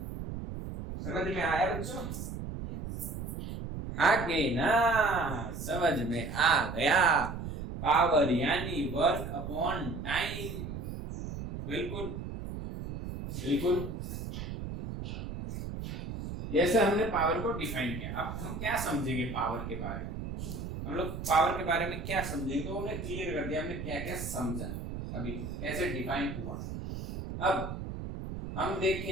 समझ में आया बच्चों? आगे ना, समझ में आ गया। पावर यानी वर्क अपॉन टाइम। बिल्कुल। जैसे हमने पावर को डिफाइन किया, अब हम क्या समझेंगे पावर के बारे में? हम लोग पावर के बारे में क्या समझेंगे? तो हमने क्लियर कर दिया हमने क्या क्या समझा, अभी कैसे डिफाइन हुआ। अब हम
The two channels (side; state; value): right; noise; rumble, 7 dB below the sound